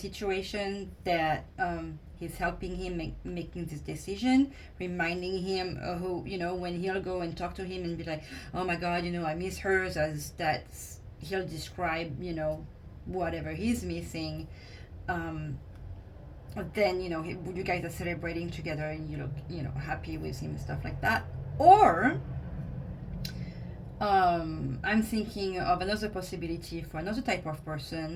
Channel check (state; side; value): identical; both; correlation 1.00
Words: that he's helping him making this decision, reminding him who, you know, when he'll go and talk to him and be like, oh my god, you know, I miss hers, as that's, he'll describe, you know, whatever he's missing. Then, you know, you guys are celebrating together and you look, you know, happy with him and stuff like that. Or I'm thinking of another possibility for another type of